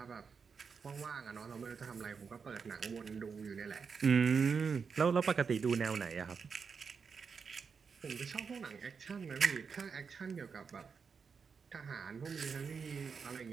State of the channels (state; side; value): quieter; left; 5.8 dB